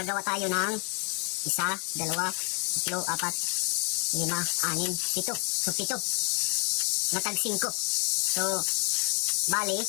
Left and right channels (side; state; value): right; quieter; 38.0 dB